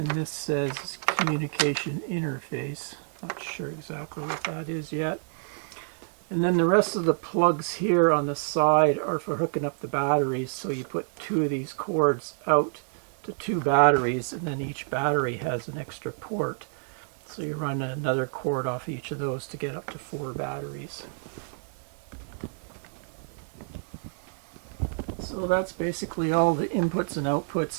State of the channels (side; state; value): left; silent; 55 dB below the other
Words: this says communication interface. Not sure exactly what that is yet. And then the rest of the plugs here on the side are for hooking up the batteries. So you put 2 of these cords out to 2 batteries, and then each battery has an extra port. So you run another cord off each of those to get up to 4 batteries. So that's basically all the inputs and